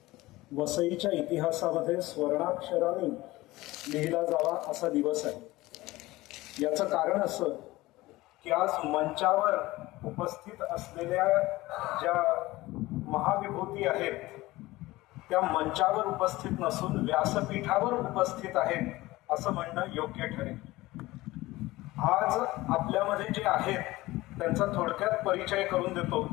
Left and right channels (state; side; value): quieter; right; 18.9 dB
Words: वसईच्या इतिहासामध्ये स्वर्णाक्षराने लिहिला जावा असा दिवस आहे। याचं कारण असं की आज मंचावर उपस्थित असलेल्या ज्या महाविभूती आहेत त्या मंचावर उपस्थित नसून व्यासपीठावर उपस्थित आहेत असं म्हणणं योग्य ठरेल। आज आपल्यामध्ये जे आहेत त्यांचा थोडक्यात परिचय करून देतो।